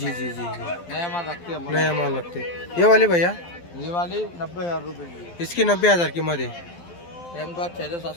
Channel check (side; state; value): right; late; 12 ms